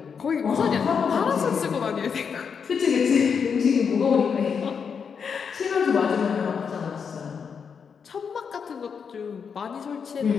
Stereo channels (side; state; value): right; quieter; 6.4 dB